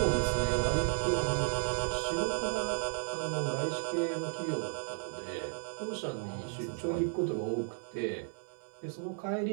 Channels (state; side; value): silent; left; 55 dB below the other